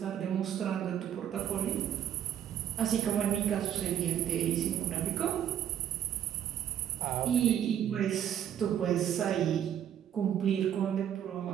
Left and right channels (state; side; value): quieter; left; 10.1 dB